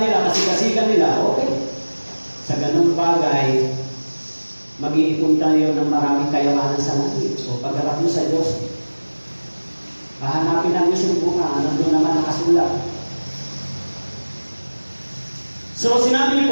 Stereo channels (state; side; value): inverted; both; correlation -1.00